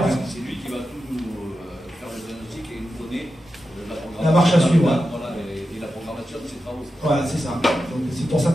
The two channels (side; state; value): both; normal; correlation 0.90